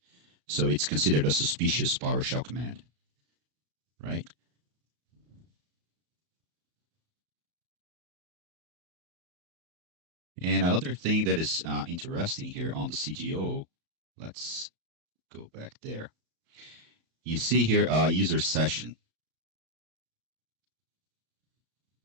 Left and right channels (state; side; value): late; left; 34 ms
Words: So it's considered a suspicious PowerShell command, right? And another thing that is interesting here on the CGO, let's go back there. You see here user session.